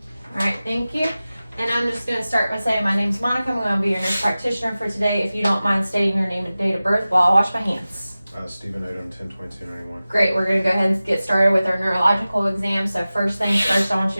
All right, thank you. And I'm just going to start by saying my name's Monica. I'm going to be your nurse practitioner for today. If you don't mind stating your name and date of birth while I wash my hands. Stephen Odom, 10/22/91. Great, we're going to go ahead and get started with our neurological exam. So first things first, I want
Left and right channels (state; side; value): inverted; both; correlation -0.96